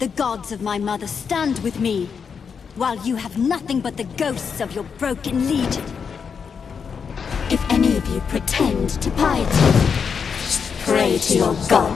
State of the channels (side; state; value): right; quieter; 6.3 dB